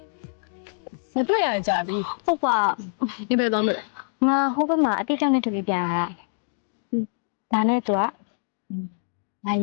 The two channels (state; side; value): silent; right; digital silence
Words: မတွေ့ရကြပြီ ဟုတ်ပါ ဒီဘယ်သွားမလဲ ငါဟိုဘက်မှာအတိအကျနဲ့တူပြီးပြန်လာတာဒါနဲ့သူက လာရ